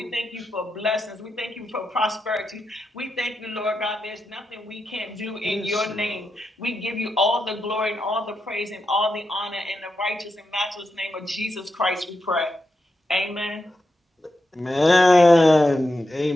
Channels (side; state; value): both; normal; correlation 0.87